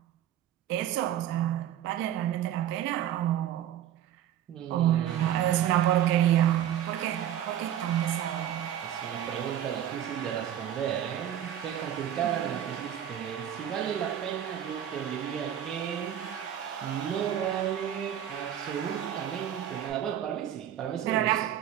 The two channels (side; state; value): left; quieter; 10.7 dB